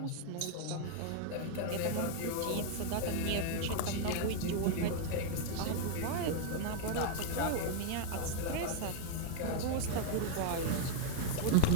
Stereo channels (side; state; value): both; different; correlation 0.00